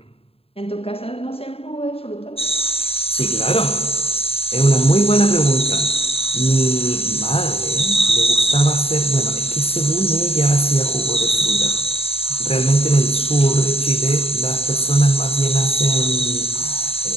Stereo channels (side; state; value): right; late; 0.28 ms